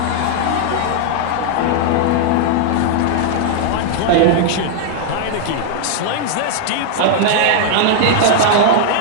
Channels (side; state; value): both; different; correlation -0.01